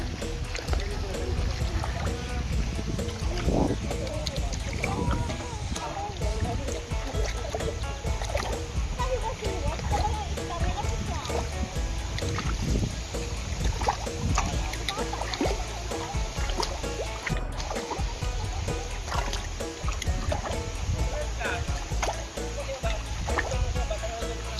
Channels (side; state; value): both; identical; correlation 1.00